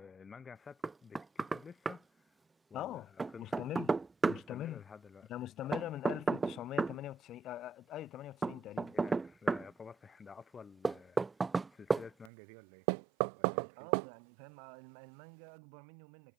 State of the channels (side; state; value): left; drops out; at 12.3 s